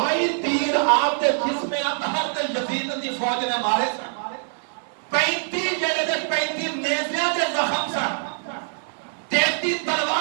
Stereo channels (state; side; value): silent; left; 62 dB below the other